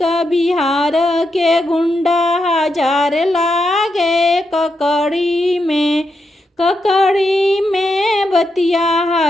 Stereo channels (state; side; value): normal; both; correlation 0.84